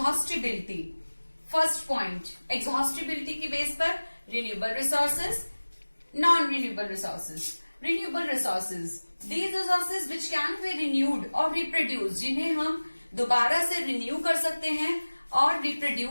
First point, exhaustibility की बेस पर renewable resources, non-renewable resources. Renewable resources, these resources which can be renewed or reproduced, जिन्हें हम दोबारा से renew कर सकते हैं और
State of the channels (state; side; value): inverted; both; correlation -1.00